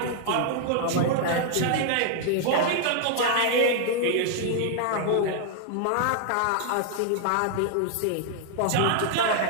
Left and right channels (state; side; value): different; both; correlation 0.00